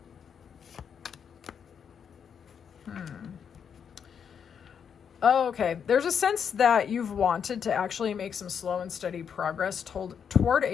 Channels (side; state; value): right; quieter; 7.4 dB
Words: Oh, okay. There's a sense that you've wanted to actually make some slow and steady progress toward